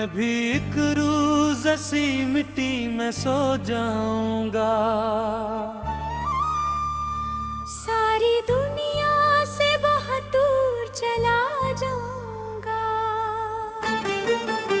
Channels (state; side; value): identical; both; correlation 1.00